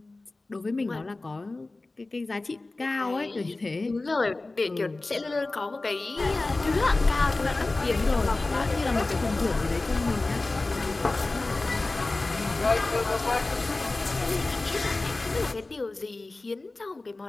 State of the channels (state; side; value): quieter; right; 3.2 dB